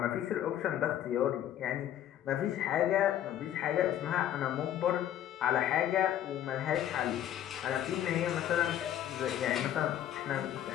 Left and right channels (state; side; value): quieter; right; 11.2 dB